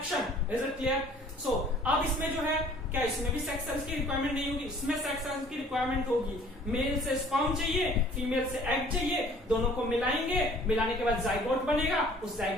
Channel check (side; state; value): both; normal; correlation 0.53